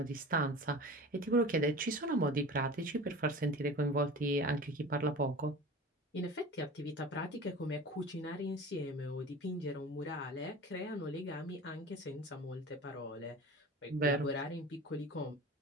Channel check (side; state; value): both; normal; correlation 0.36